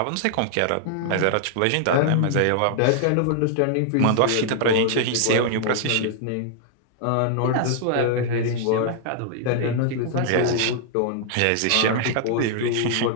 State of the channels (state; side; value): different; both; correlation 0.00